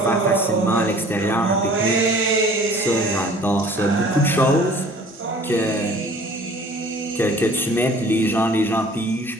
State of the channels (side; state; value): both; normal; correlation 0.50